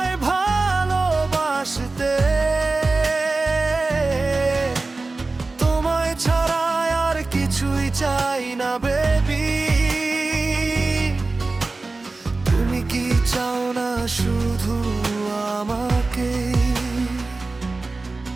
ভালোবাসতে। তোমায় ছাড়া আর কিছুই চাই না বেবি, তুমি কি চাও না শুধু আমাকে?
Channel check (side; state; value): left; quieter; 3.5 dB